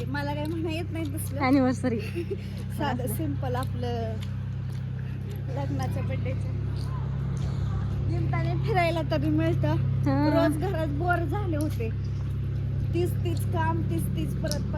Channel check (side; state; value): both; identical; correlation 1.00